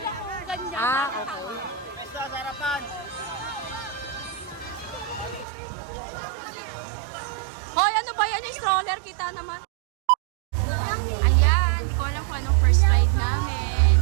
oh, ganyan. Ah, okay. Basta sa harapan. Hoy, ano ba yan? Yung stroller, kita naman. Ayan, hindi ko alam kung anong first ride namin.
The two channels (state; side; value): drops out; left; at 5.5 s